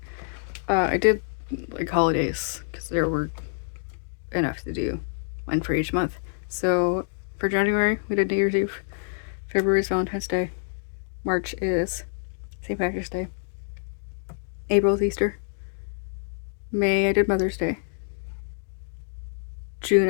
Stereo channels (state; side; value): silent; right; digital silence